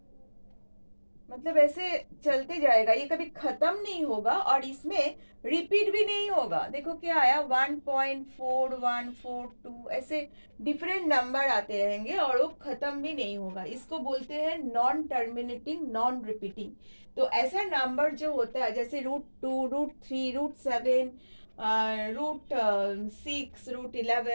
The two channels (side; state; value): both; inverted; correlation -1.00